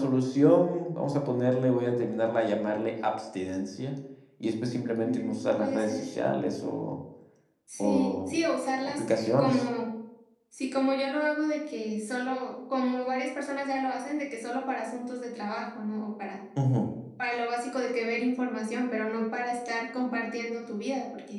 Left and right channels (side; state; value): both; identical; correlation 1.00